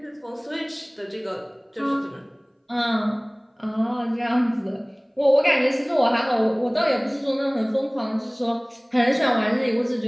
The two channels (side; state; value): both; identical; correlation 1.00